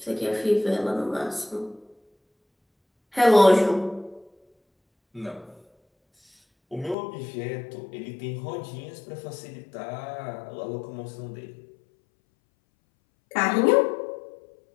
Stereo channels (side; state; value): right; drops out; at 7.0 s